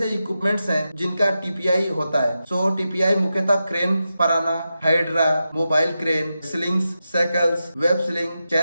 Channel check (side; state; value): both; inverted; correlation -0.90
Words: इक्विपमेंट्स हैं जिनका टीपीआई होता है? सो टीपीआई मुख्यतः क्रेन, पराना, hydra, mobile crane, slings, cycles, web sling,